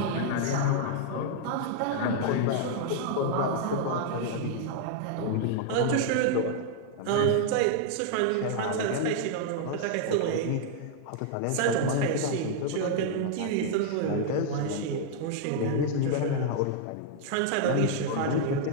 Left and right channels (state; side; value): different; both; correlation -0.01